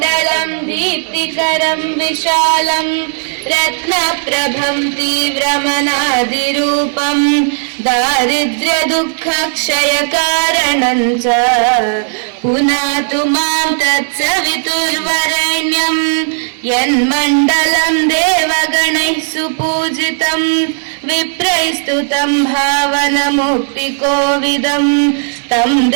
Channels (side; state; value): left; silent; 65 dB below the other